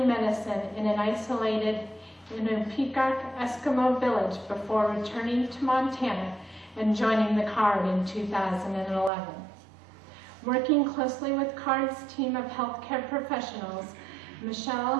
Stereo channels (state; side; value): drops out; left; at 9.1 s